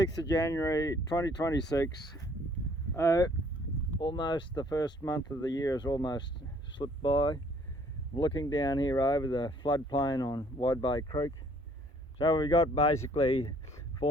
of January 2026. Almost the first month of the year has almost slipped by. I'm looking down here over the floodplain on Wide Bay Creek. So we've got basically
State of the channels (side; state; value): both; normal; correlation 0.60